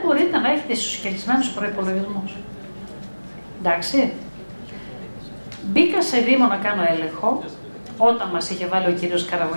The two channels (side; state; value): both; inverted; correlation -1.00